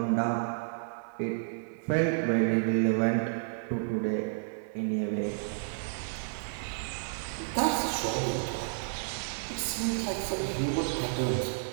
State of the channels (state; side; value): silent; left; 57 dB below the other